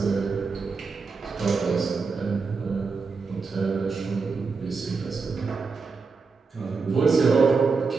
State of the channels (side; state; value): left; quieter; 4.7 dB